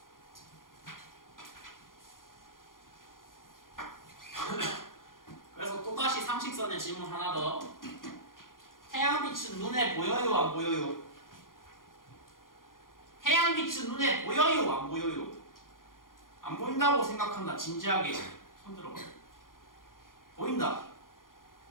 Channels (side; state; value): right; late; 0.90 ms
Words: 그래서 또다시 상식선의 질문 하나 더. 태양빛은 눈에 보여요? 안 보여요? 태양빛은 눈에 보여요? 안 보여요? 안 보인다고 생각한다. 진지하게 손 들어봐. 보인다.